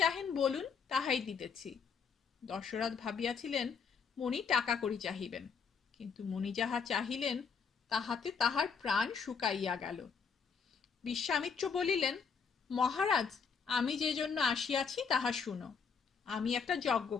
বলুন, তাহাই দিতেছি। দশরথ ভাবিয়াছিলেন মণি টাকা করি চাহিবেন, কিন্তু মণি যাহা চাহিলেন তাহাতে তাহার প্রাণ শুকাইয়া গেল। বিশ্বামিত্র বলিলেন, মহারাজ, আমি যে জন্য আসিয়াছি তাহা শুনো। আমি একটা যজ্ঞ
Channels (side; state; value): right; quieter; 6.0 dB